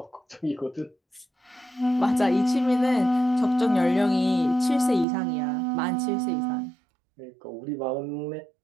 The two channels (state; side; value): drops out; left; at 5.1 s